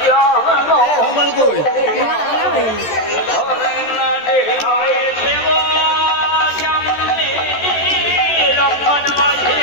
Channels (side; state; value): right; late; 13 ms